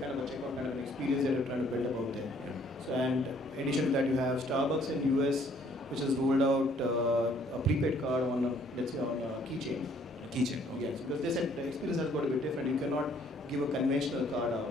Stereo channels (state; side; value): normal; both; correlation 0.62